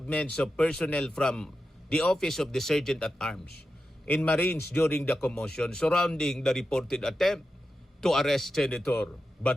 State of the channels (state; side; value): normal; both; correlation 0.90